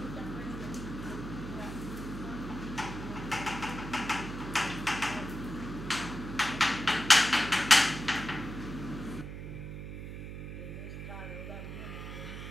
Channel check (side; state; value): right; noise; hum, 8 dB below the sound